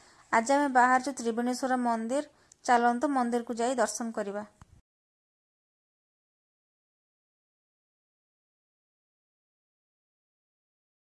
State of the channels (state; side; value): identical; both; correlation 1.00